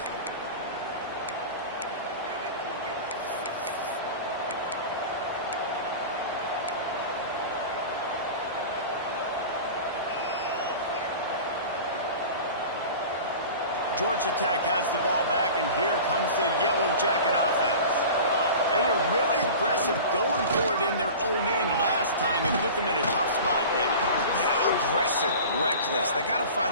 Georgia Tech has the ball back, and here comes the Yellow Jacket offense. They were really aggressive going for it in their own end last time and put them in a tough spot, David. Yeah, aggressive, reckless. They got to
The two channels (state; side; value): inverted; both; correlation -0.36